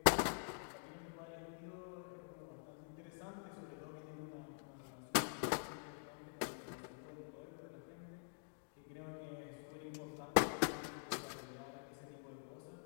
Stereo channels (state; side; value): silent; right; digital silence